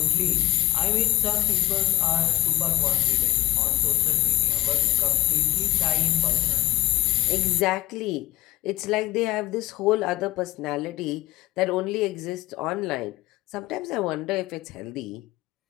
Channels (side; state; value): right; quieter; 17.6 dB